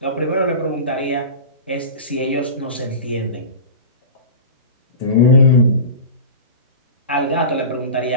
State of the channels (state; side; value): inverted; both; correlation -0.32